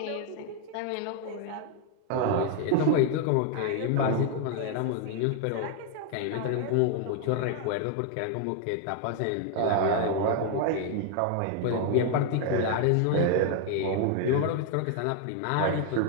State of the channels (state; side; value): different; both; correlation 0.00